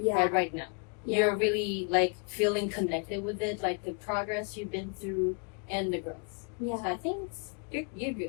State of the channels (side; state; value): right; quieter; 37.6 dB